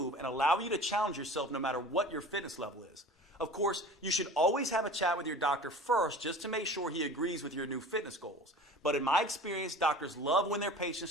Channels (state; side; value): normal; both; correlation 0.40